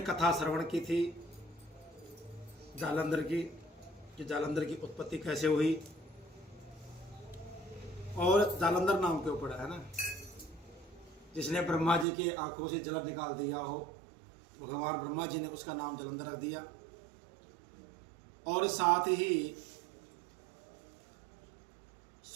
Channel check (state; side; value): drops out; left; at 12.1 s